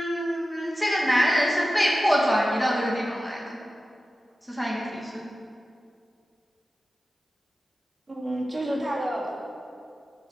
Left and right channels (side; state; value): both; normal; correlation 0.94